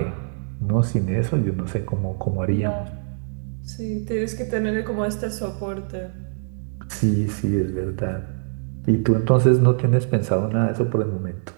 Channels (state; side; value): silent; left; digital silence